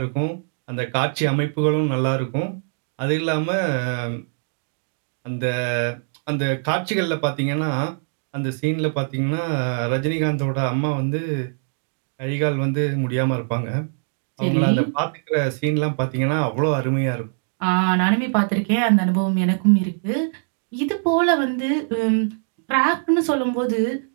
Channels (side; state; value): left; silent; digital silence